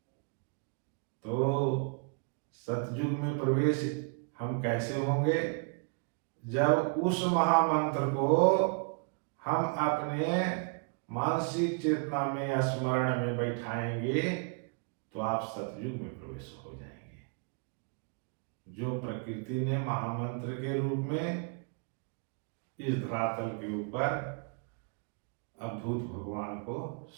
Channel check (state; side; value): quieter; left; 38.7 dB